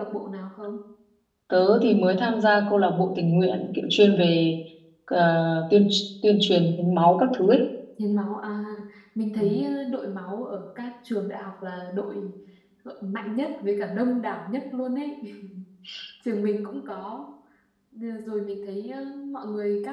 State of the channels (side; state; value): both; identical; correlation 1.00